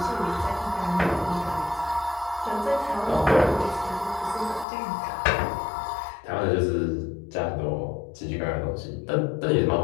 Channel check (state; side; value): drops out; right; at 4.7 s